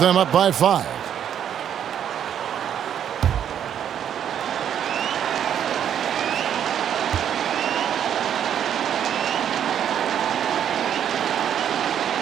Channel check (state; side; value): quieter; left; 9.3 dB